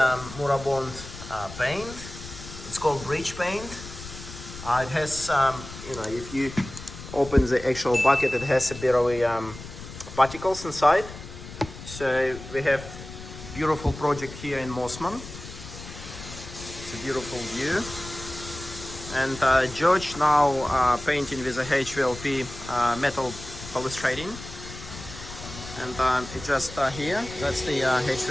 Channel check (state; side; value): noise; left; rumble, 13 dB below the sound